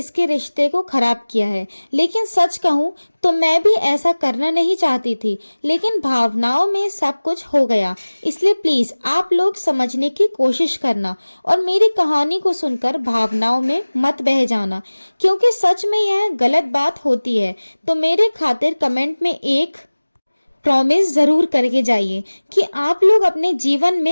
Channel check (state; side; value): inverted; both; correlation -1.00